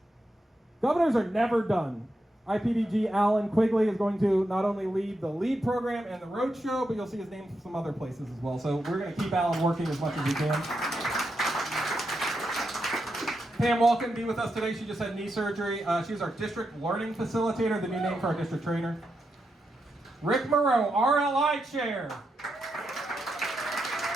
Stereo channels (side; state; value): both; normal; correlation 0.85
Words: Governors are never done. IPDG Alan Quigley is going to not only lead the LEAD program and the road show, but you'll see his name from some other places as well. So we're going to keep Alan working as much as we can. Pam Wall couldn't be with us today. She just had knee surgery. She's our district learning facilitator, the new name for our district trainer. Rick Moreau, RLI chair.